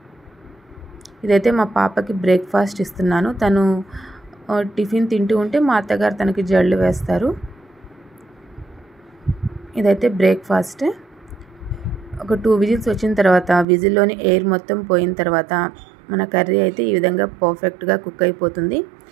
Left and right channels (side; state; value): left; drops out; at 13.7 s